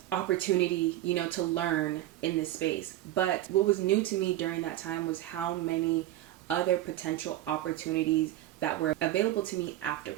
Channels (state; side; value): quieter; left; 14.3 dB